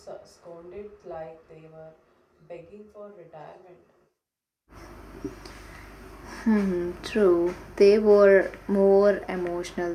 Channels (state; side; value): identical; both; correlation 1.00